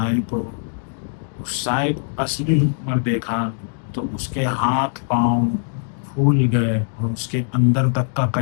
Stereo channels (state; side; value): silent; right; digital silence